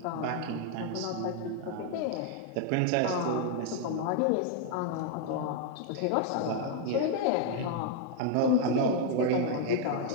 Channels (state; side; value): different; both; correlation 0.00